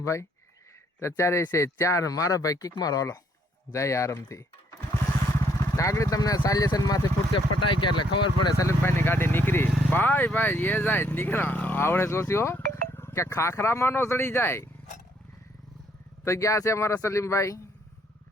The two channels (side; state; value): both; normal; correlation 0.68